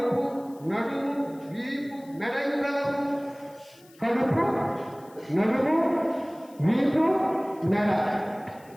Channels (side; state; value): left; noise; hiss, 27 dB below the sound